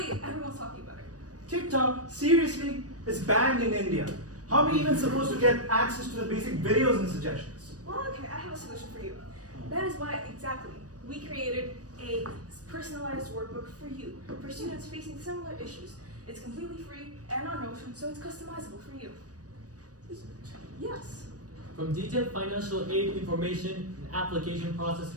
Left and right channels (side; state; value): left; late; 0.67 ms